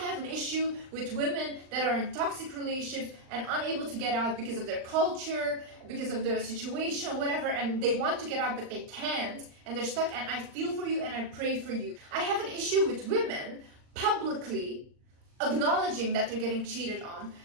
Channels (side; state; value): left; late; 39 ms